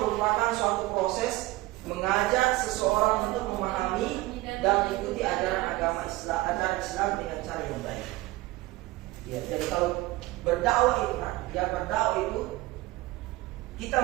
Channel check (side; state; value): left; quieter; 19.1 dB